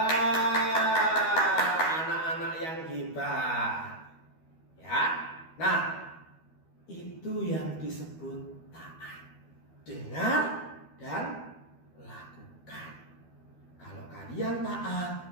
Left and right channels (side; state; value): right; late; 12 ms